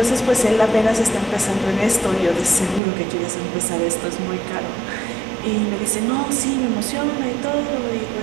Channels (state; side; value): drops out; left; at 2.8 s